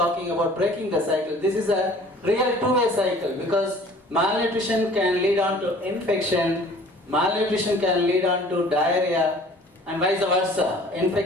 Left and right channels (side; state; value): both; normal; correlation 0.50